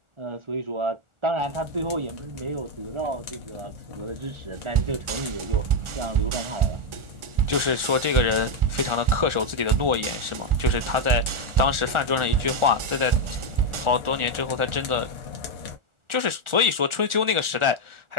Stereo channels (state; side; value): late; left; 1.4 ms